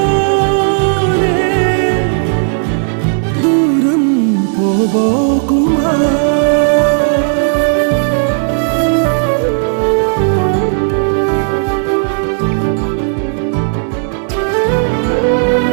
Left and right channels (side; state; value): left; silent; digital silence